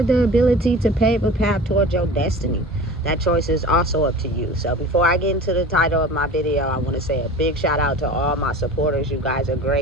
the ability to pave a path towards your destiny. That choice is also up to you. So before I get into the title of my video, I want to say a big shout out to all my supporters. You guys are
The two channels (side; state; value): both; normal; correlation 0.37